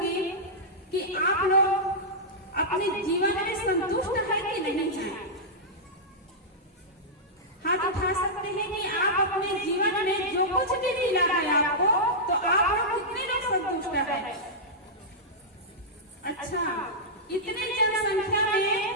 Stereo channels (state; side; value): normal; both; correlation -0.10